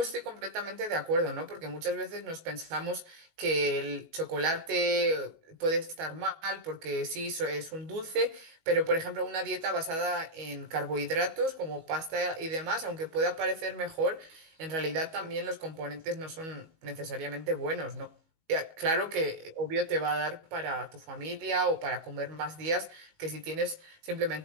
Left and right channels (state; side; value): late; left; 19 ms